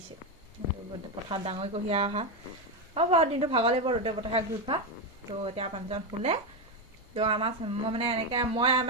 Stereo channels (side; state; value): both; normal; correlation 0.09